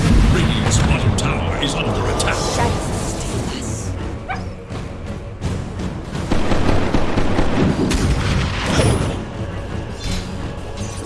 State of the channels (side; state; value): both; identical; correlation 1.00